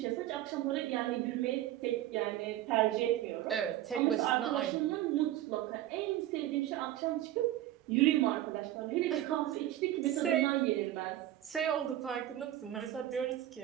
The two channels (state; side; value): quieter; left; 13.5 dB